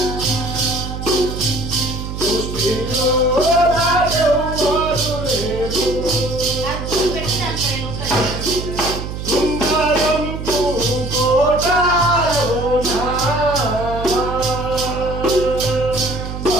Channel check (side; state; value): right; noise; hum, 6 dB below the sound